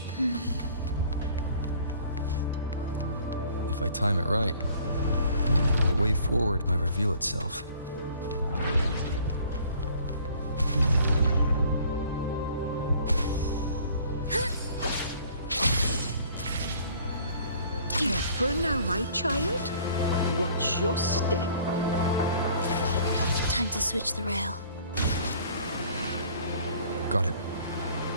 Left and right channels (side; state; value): both; inverted; correlation -0.54